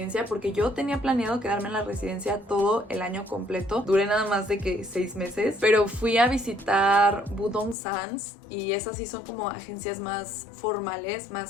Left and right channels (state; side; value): drops out; right; at 7.8 s